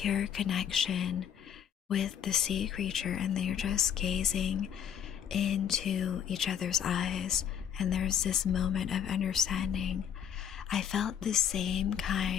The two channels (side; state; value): right; quieter; 8.8 dB